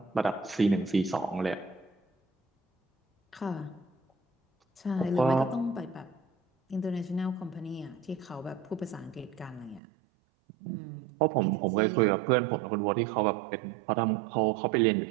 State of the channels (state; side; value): drops out; left; at 9.8 s